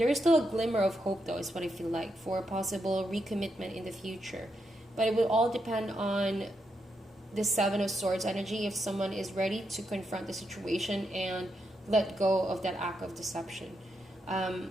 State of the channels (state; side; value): normal; both; correlation 0.82